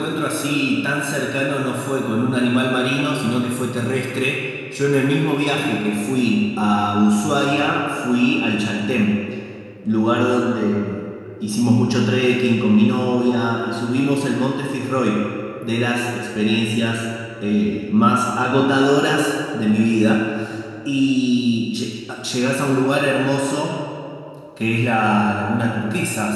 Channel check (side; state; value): both; identical; correlation 1.00